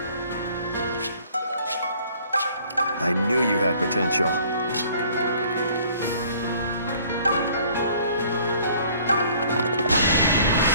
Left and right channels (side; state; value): both; inverted; correlation -0.56